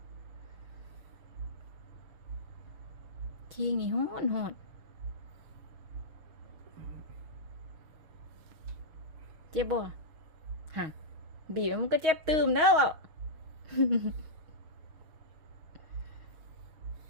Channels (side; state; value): left; late; 6.3 ms